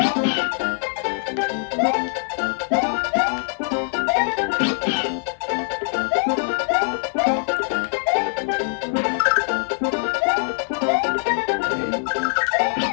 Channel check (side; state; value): right; silent; 59 dB below the other